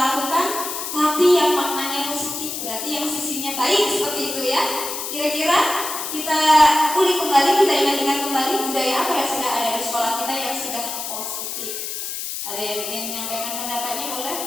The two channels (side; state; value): left; noise; hiss, 5 dB below the sound